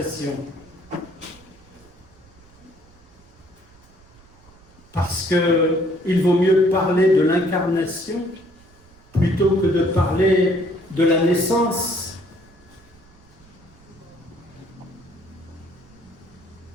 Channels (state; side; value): noise; right; rumble, 27 dB below the sound